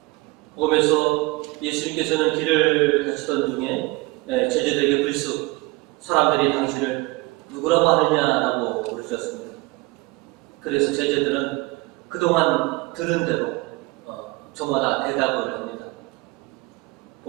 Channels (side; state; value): left; quieter; 22.3 dB